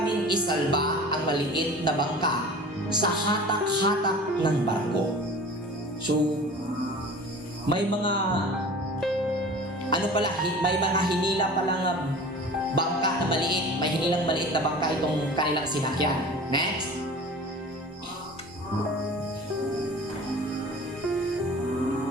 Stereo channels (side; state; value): both; normal; correlation 0.40